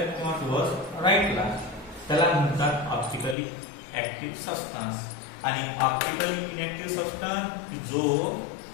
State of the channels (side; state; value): right; drops out; at 3.4 s